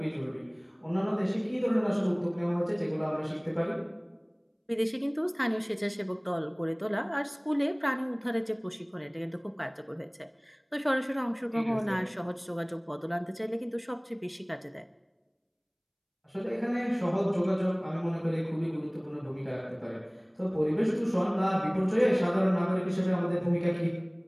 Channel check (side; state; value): both; identical; correlation 1.00